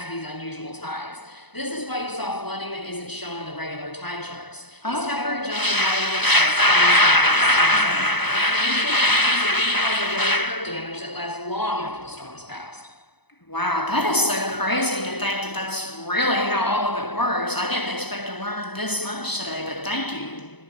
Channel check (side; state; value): right; late; 0.99 ms